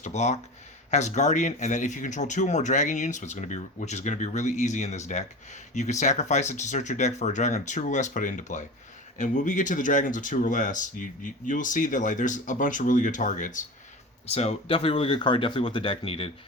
to block. Has Guardian, and then if you control 2 or more dragon units, which is going to be really easy in this deck, you can sacrifice it to search your deck for a dragon of 2 or less, put it into play. And when we get to the dragons of 2 or less, you'll see that like there's a bunch of really good targets. So definitely a really good card, definitely what the deck needed.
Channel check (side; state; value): both; normal; correlation 0.30